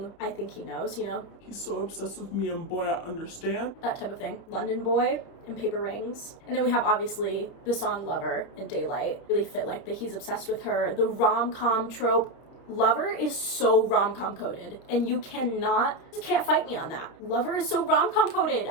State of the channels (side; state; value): right; late; 30 ms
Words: I Think He Knows, you know? He's so obsessed with me and boy, I understand. That type of thing. London Boy and Paper Rings. And then we have obviously the song Lover and Daylight. Really fit like the He's Obsessed with Her, the rom-com trope. Lover is so rom-com coded, and you can't fight me on that. Lover is so rom-com coded.